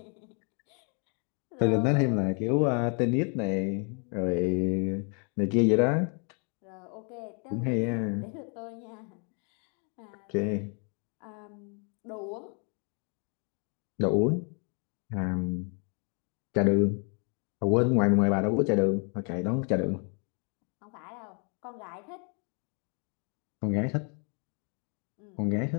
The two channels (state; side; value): quieter; right; 38.4 dB